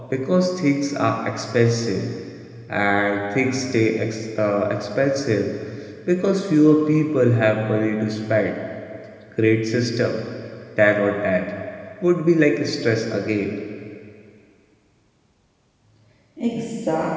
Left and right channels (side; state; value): both; identical; correlation 1.00